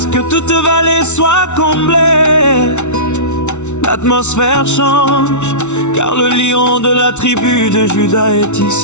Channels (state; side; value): late; right; 0.83 ms